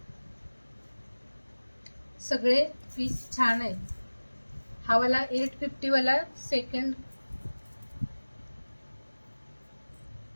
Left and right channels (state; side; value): inverted; both; correlation -1.00